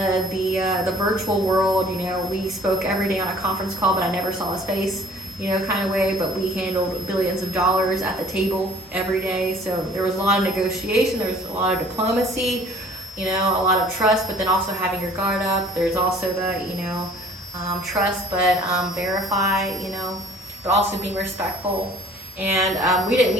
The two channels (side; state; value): both; normal; correlation 0.54